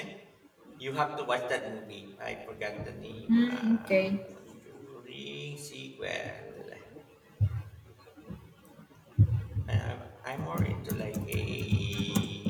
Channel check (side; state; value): both; identical; correlation 1.00